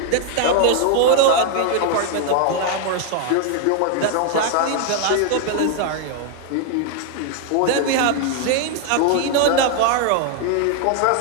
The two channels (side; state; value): both; different; correlation 0.01